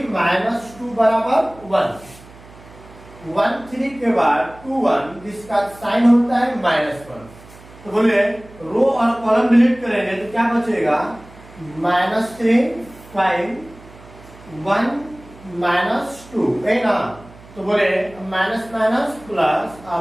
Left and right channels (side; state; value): right; noise; hum, 21 dB below the sound